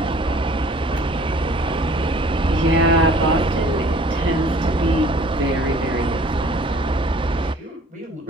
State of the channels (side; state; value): both; normal; correlation 0.53